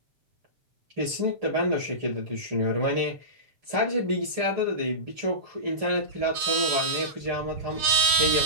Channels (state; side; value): late; left; 7.9 ms